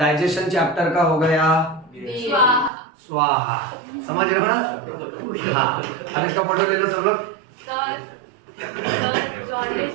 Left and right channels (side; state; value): left; drops out; at 2.7 s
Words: चैप्टर का हो गया स्वाहा, समझ रहे हो ना? हाँ, अब इसका फोटो ले लो सब लोग। जॉन्डिस